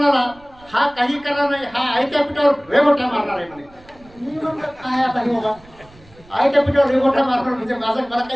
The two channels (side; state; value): right; noise; rumble, 26 dB below the sound